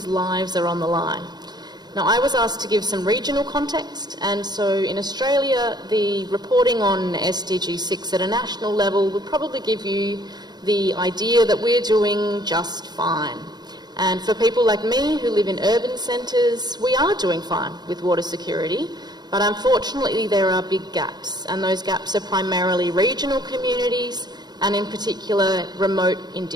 lives are on the line. Now, I was asked to give some regional context, and so in Australia, the reporting on SDG 6 at a national level would probably give you the idea that we're doing just fine. And for people like me who live in urban centres, we are doing fine with water security, but unfortunately there are big gaps, and those gaps are primarily regional communities and in particular remote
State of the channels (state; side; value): late; left; 0.20 ms